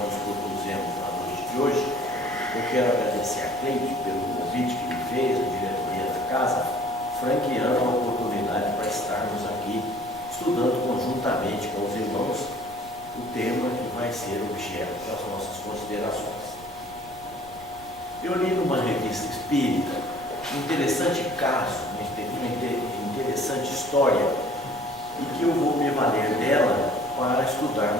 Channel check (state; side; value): noise; right; rumble, 22 dB below the sound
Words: propusemos na noite de hoje, eu quero agradecer a Cleide pelo convite que me fez, a diretoria da casa, franqueando a oportunidade para estarmos aqui estudando conjuntamente com os irmãos o tema que vai ser objeto das nossas considerações. Eu li numa revista espírita um interessante caso, uma interessante história, e que eu vou me valer dela para